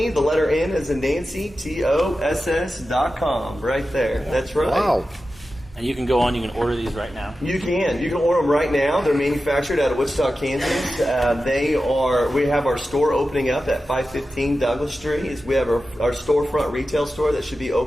the letter N as in Nancy, TOSS.com. Right there. That's right. Wow. And you can go on, you can order these right now. You can. You can order them right now. They're manufactured out of Wichita, Kansas. We have our store opening up at 515 Douglas Street. We have our storefront retail store that should be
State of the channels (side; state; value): both; normal; correlation 0.93